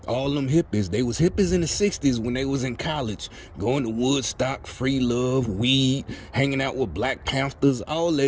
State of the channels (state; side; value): identical; both; correlation 1.00